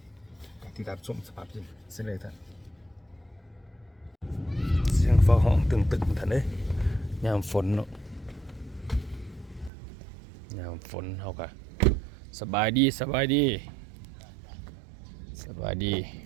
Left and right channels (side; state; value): left; drops out; at 9.7 s